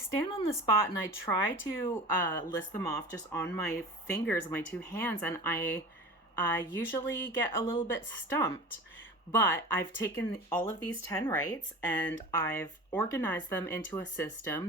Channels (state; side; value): normal; both; correlation 0.36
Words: on the spot and I try to list them off just on my fingers, my two hands, and I usually get a little bit stumped. But I've taken all of these 10 rights and I've organized them into a